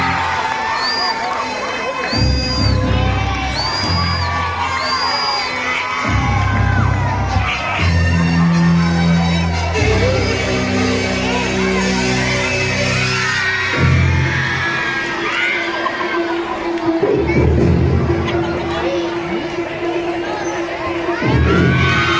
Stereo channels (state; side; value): identical; both; correlation 1.00